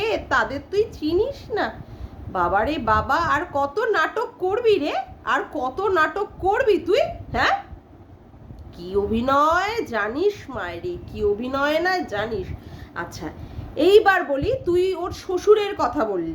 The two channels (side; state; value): both; identical; correlation 1.00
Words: তাদের তুই চিনিস না? বাবারে বাবা, আর কত নাটক করবি রে? আর কত নাটক করবি তুই? হ্যাঁ, কি অভিনয় জানিস মায়েরি, কি অভিনয় না জানিস? আচ্ছা, এইবার বলি, তুই ওর শ্বশুরের কথা